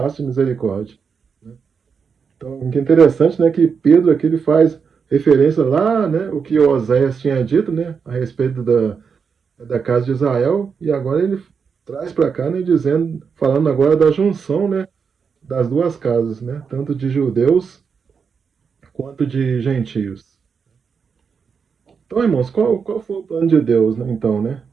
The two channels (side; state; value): left; quieter; 6.0 dB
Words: misericórdia. Então, o que é interessante, né, que Pedro aqui ele faz referência lá, né, o que Oséias tinha dito, né, a respeito da casa de Israel, e agora ele traz para cá, né, falando agora da junção, né, das duas casas, né, tanto de judeus quanto de gentios. Então, irmãos, qual foi o plano de Deus, né, então, né,